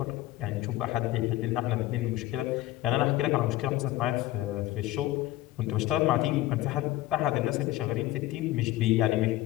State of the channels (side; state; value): right; quieter; 16.0 dB